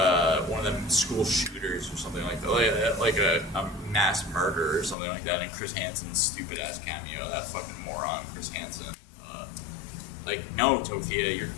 one of them school shooters or something like that, like a mass murder or something like that, and Chris Hansen's stupid ass Cameo, that fucking moron Chris Hansen. No, Tophia,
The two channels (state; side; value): drops out; right; at 5.0 s